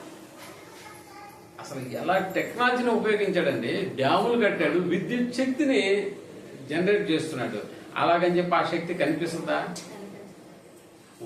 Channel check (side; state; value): both; identical; correlation 1.00